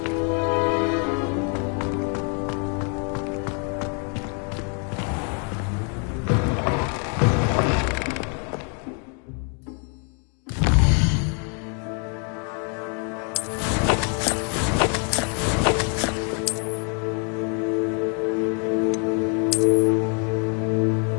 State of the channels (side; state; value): right; quieter; 39.7 dB